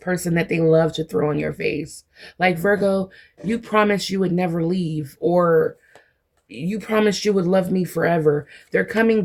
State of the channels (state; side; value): identical; both; correlation 1.00